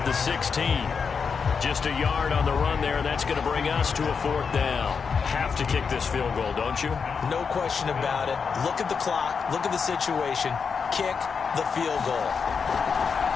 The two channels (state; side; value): quieter; right; 5.8 dB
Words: the 16. Just a yard on the run there, and that's going to bring us to a 4th down. Have to kick this field goal, don't you? No question about it. Look at the clock. Look at the situation. Kick the field goal.